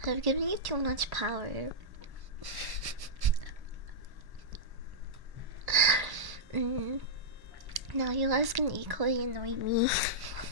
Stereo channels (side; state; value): left; late; 1.1 ms